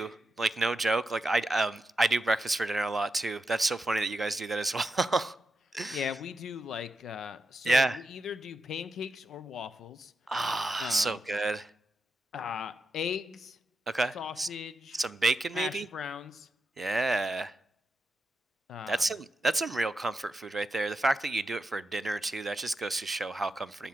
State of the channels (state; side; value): normal; both; correlation 0.87